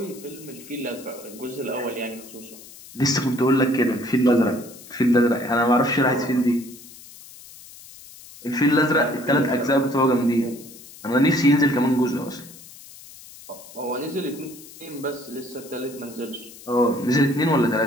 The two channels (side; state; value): left; noise; hiss, 19 dB below the sound